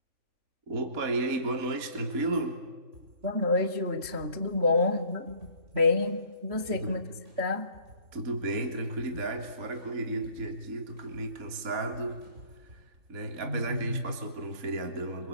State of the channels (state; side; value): late; left; 3.5 ms